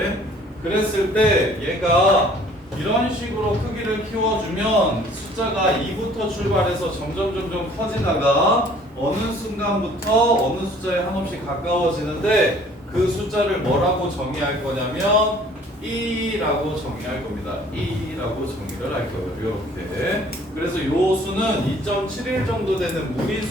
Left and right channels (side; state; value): both; normal; correlation 0.54